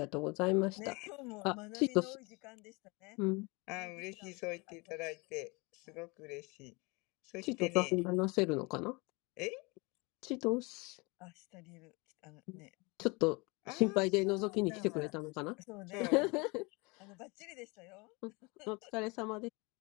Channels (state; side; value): quieter; right; 27.4 dB